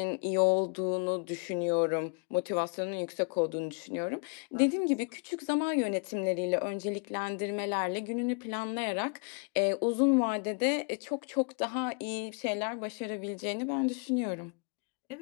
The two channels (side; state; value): right; quieter; 37.4 dB